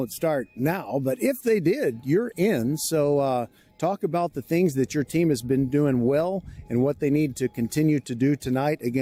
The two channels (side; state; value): both; identical; correlation 1.00